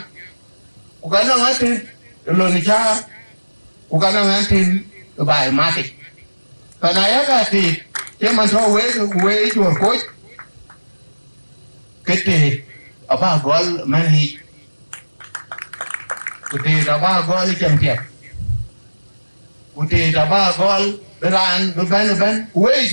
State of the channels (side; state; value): both; inverted; correlation -1.00